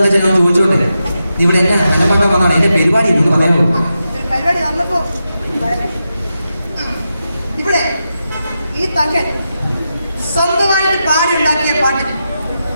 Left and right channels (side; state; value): both; inverted; correlation -0.88